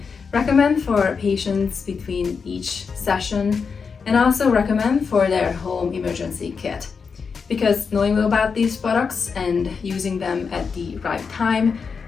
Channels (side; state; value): right; quieter; 5.6 dB